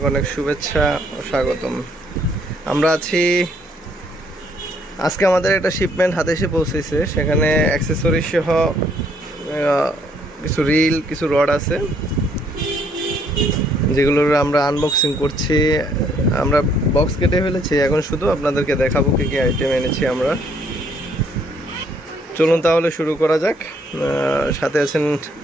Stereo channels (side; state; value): both; normal; correlation 0.67